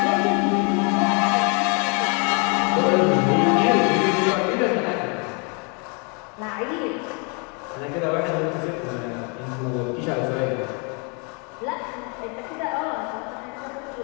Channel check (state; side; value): quieter; right; 34.5 dB